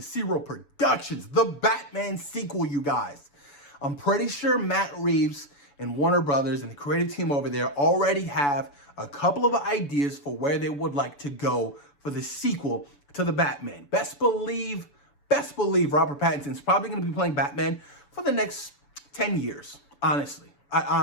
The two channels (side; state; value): right; late; 6.9 ms